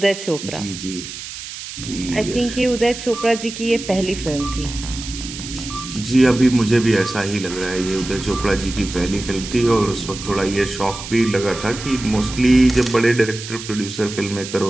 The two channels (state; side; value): noise; right; hiss, 10 dB below the sound